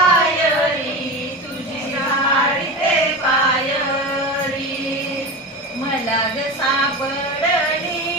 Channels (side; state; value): both; normal; correlation 0.25